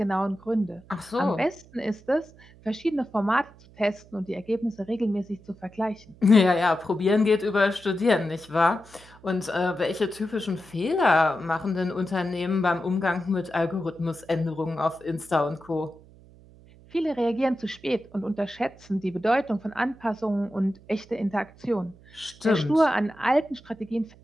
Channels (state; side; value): noise; right; hum, 24 dB below the sound